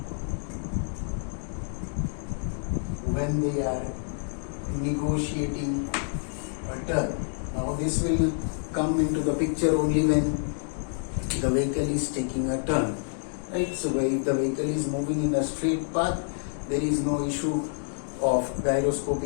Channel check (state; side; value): silent; right; digital silence